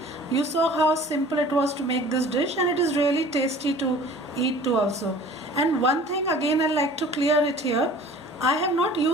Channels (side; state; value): both; normal; correlation 0.46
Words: You saw how simple it was to make this dish, and it is really tasty to eat too also. And one thing again I'd like to clear it here. I have not